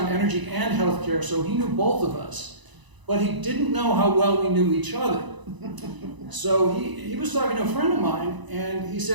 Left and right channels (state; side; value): late; left; 1.0 ms